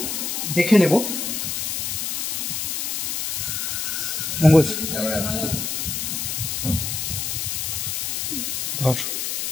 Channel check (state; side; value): noise; left; hiss, 1 dB below the sound